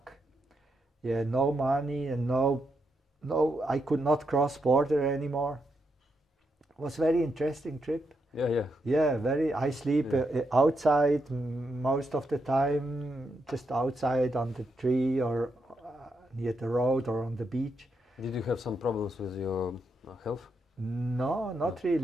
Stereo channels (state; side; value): normal; both; correlation 0.82